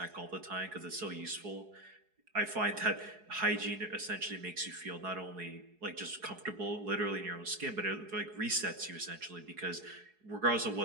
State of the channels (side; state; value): left; late; 4.7 ms